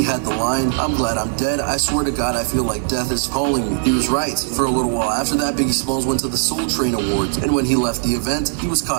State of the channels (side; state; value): left; silent; 66 dB below the other